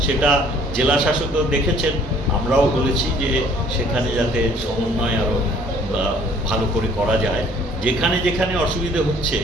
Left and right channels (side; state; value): both; normal; correlation 0.57